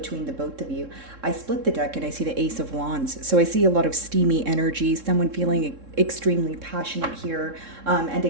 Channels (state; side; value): late; left; 3.7 ms